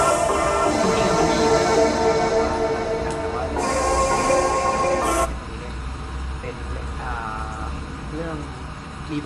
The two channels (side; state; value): both; identical; correlation 1.00